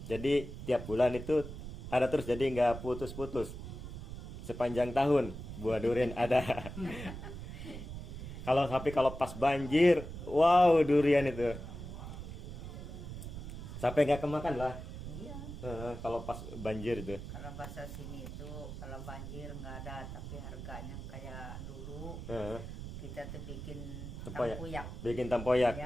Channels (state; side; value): noise; right; rumble, 9 dB below the sound